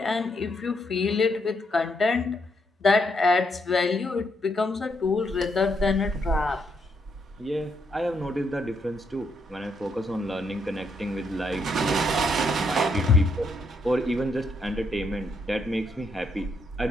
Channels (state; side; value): normal; both; correlation 0.76